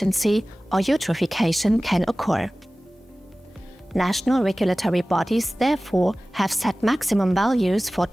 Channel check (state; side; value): normal; both; correlation 0.97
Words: or eutrophication can occur. National regulatory bodies therefore have set maximum values for